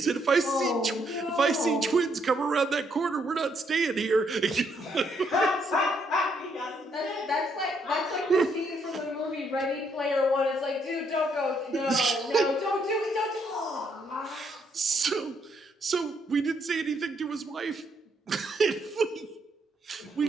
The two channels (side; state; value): both; normal; correlation 0.73